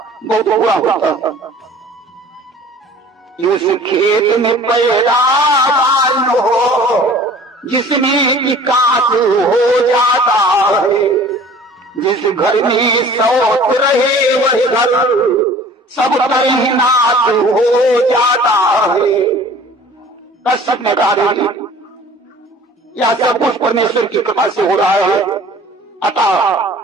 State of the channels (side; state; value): both; normal; correlation 0.47